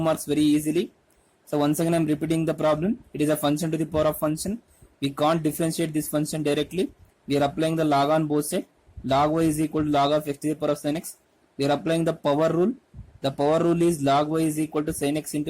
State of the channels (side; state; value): both; identical; correlation 1.00